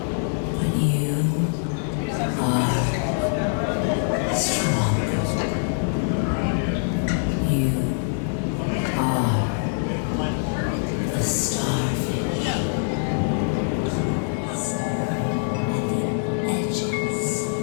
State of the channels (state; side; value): silent; right; digital silence